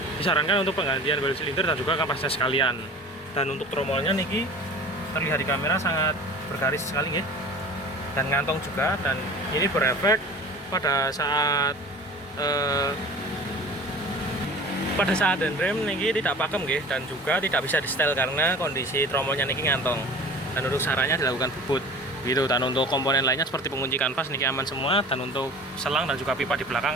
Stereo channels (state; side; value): normal; both; correlation 0.41